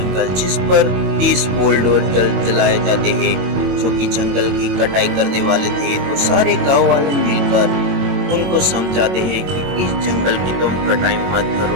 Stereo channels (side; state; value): left; late; 22 ms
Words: जिस पर 30 बुलडोजर चलाए जाते हैं जो कि जंगल की कटाई करने वाले थे। तो सारे गांव वाले मिलकर उनको समझाते हैं कि इस जंगल की तुम कटाई मत